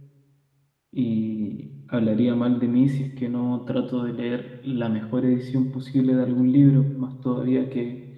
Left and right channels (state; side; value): identical; both; correlation 1.00